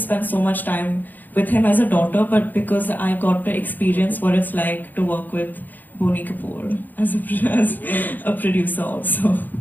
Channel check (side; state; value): right; late; 0.086 ms